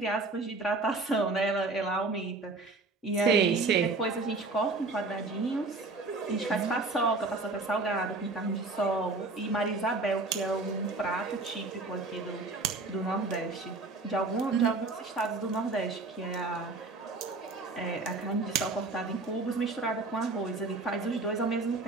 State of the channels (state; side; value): quieter; left; 3.6 dB